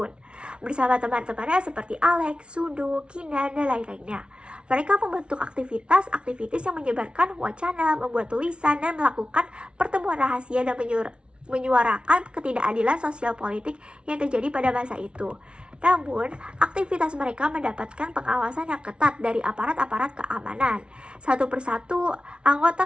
bersama teman-temannya seperti Alex, Sundu, Kinan, dan lain-lainnya. Mereka membentuk aktivitas yang menyebarkan wacana, membuat tulisan, dan melakukan pertemuan rahasia dan menyuarakan ketidakadilan sosial politik yang terjadi pada masa itu. Namun, aktivitas mereka mendapatkan pengawasan yang ketat dari aparat-aparat keamanan. Satu persatu,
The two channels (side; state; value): left; late; 0.058 ms